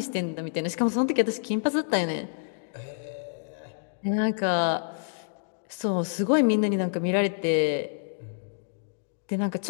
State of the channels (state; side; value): silent; right; digital silence